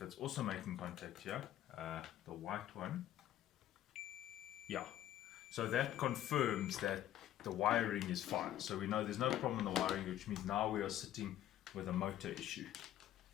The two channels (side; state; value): right; quieter; 12.4 dB